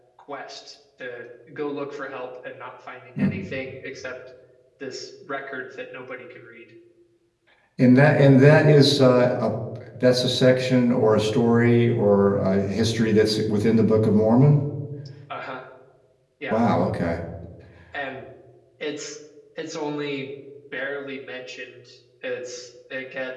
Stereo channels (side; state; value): both; identical; correlation 1.00